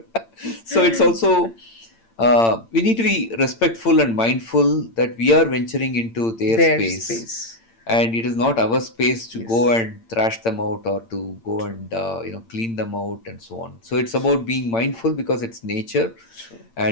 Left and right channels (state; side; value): late; right; 8.8 ms